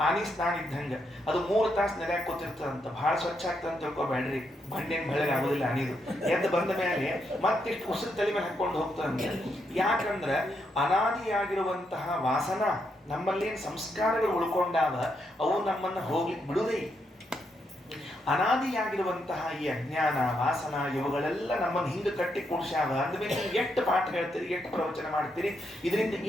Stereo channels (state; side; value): normal; both; correlation 0.80